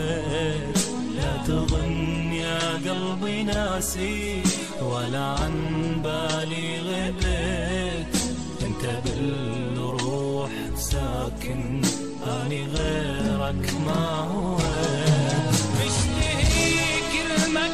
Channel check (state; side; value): identical; both; correlation 1.00